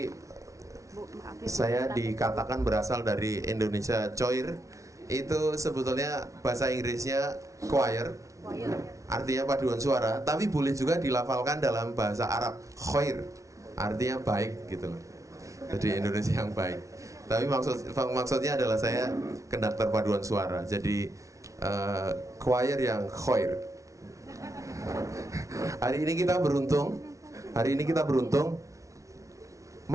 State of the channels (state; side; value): late; left; 0.15 ms